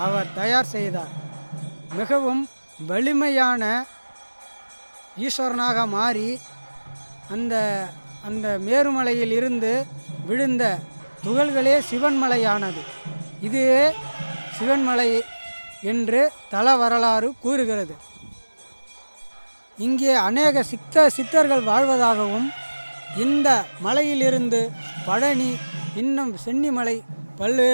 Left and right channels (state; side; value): inverted; both; correlation -1.00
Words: அவர் தயார் செய்தார். மிகவும் வலிமையான ஈஸ்வரனாக மாறி அந்த மேருமலையில் இருந்து விழுந்த துகள்களே சிவன்மலையானது. இதுவே சிவன்மலை என்று தல வரலாறு கூறுகிறது. இங்கே அநேக சித்தர்கள் வாழ்வதாகவும் இந்த மலையிலிருந்து பழனி இன்னும் சென்னிமலை